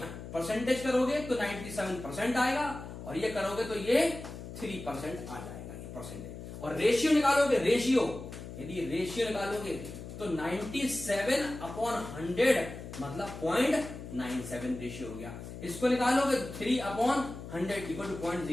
परसेंटेज करोगे तो 97% आएगा, और ये करोगे तो ये 3% आ जाएगा ये परसेंटेज। और रेशियो निकालोगे, रेशियो यदि रेशियो निकालोगे तो 97/100 मतलब 0.97 रेशियो हो गया। इसको निकालोगे तो 3/100 इक्वल टू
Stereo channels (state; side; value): noise; left; hum, 11 dB below the sound